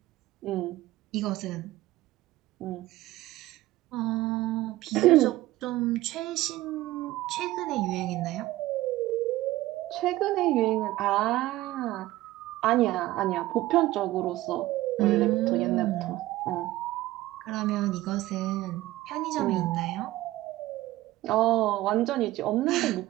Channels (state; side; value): quieter; left; 16.8 dB